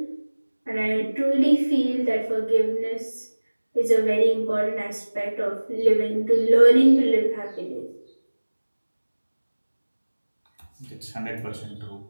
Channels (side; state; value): both; inverted; correlation -1.00